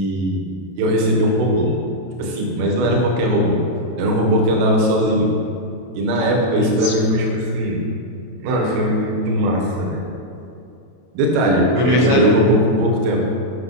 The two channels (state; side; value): late; left; 32 ms